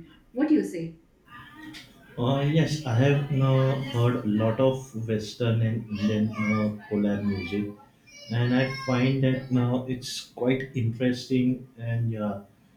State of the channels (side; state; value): both; identical; correlation 1.00